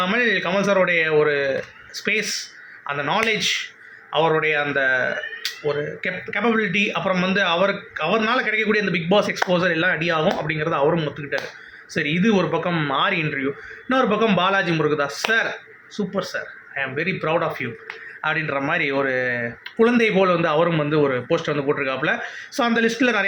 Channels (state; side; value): identical; both; correlation 1.00